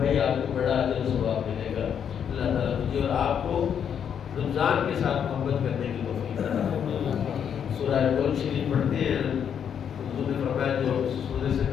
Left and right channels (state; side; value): quieter; right; 8.2 dB